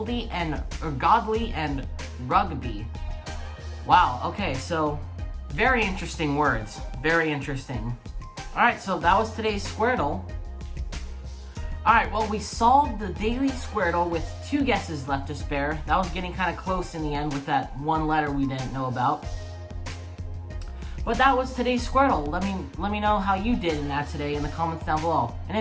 and rugby. Wow, okay, so very interesting words. Very interesting. Alright, so that was today's Squardle. Alright, well, we solved the Daily Squardle with 2 guesses left to spare. That was getting kind of close in the end with that 1 letter we didn't know about. But that was today's Squardle. Let me know how you did in that today in the comments down below. And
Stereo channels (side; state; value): both; identical; correlation 1.00